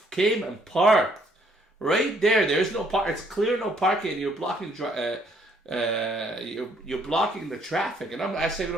came and parked right there. There's no park. It's clear no parking, and you're blocking you're blocking the traffic. And I say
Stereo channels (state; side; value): normal; both; correlation 0.66